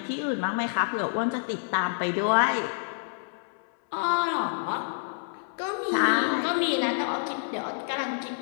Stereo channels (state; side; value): silent; right; 59 dB below the other